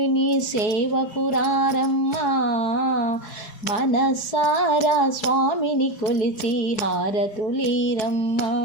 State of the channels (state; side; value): late; right; 4.7 ms